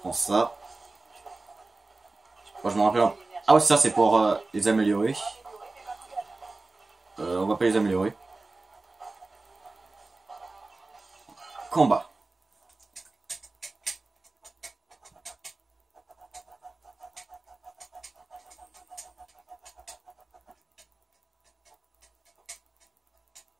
ça. Moi, je me rappelle... Ah ouais, ça c'est pour les améliorer. On va pas les améliorer. Combat.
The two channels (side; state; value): left; quieter; 3.4 dB